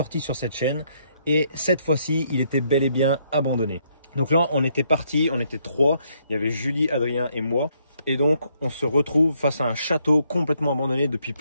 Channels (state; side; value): inverted; both; correlation -0.72